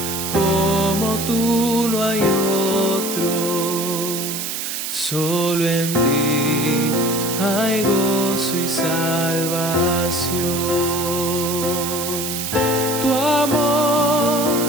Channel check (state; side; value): noise; right; hiss, 4 dB below the sound